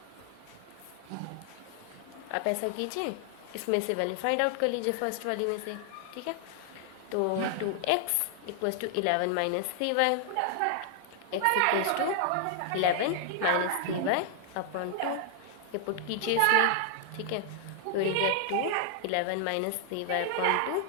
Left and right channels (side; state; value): both; different; correlation 0.00